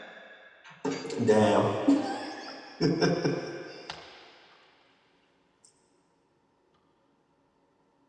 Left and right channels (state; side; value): identical; both; correlation 1.00